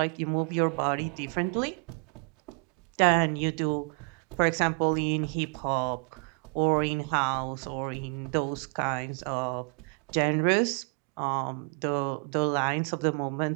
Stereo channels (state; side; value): quieter; left; 36.8 dB